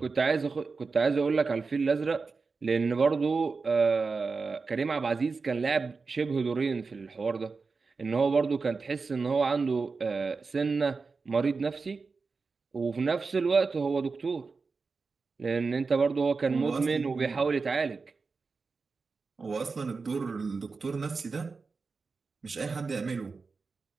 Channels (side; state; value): left; quieter; 4.5 dB